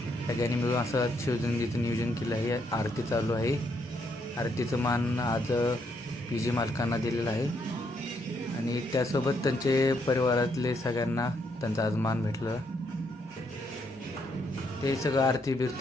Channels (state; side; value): normal; both; correlation 0.75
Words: सगळ्यांनी मिळून असं शिवजयंतीचं नियोजन केलं आहे. आरती चालू आहे. आरतीचं मान आज पी जी मालकांना दिलेलं आहे आणि त्यासोबत त्यांचे परिवारातले सगळ्यांना त्यांचा आज मान भेटलं. ते सगळं आरती